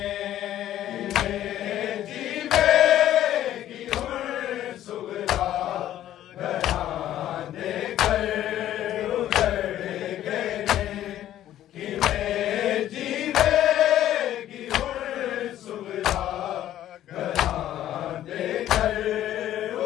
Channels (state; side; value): quieter; right; 12.5 dB